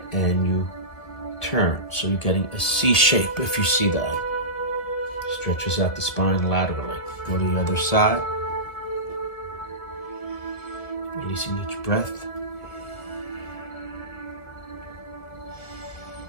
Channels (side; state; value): right; late; 1.7 ms